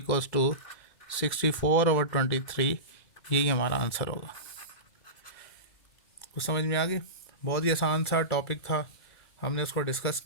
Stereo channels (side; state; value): right; late; 2.3 ms